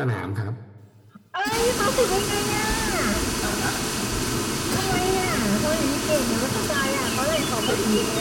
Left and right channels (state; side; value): identical; both; correlation 1.00